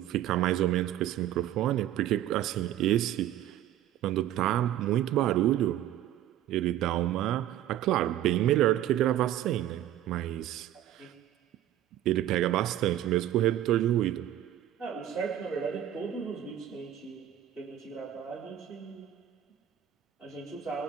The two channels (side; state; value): left; quieter; 12.2 dB